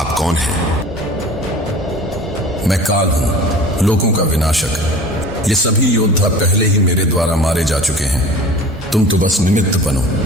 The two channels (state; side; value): normal; both; correlation 0.41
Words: कौन हैं? मैं काल हूं, लोगों का विनाशक। ये सभी योद्धा पहले ही मेरे द्वारा मारे जा चुके हैं। तुम तो बस निमित्त बनो।